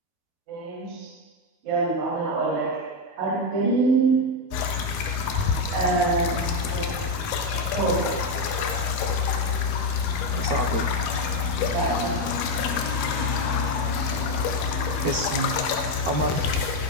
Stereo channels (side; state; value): left; late; 13 ms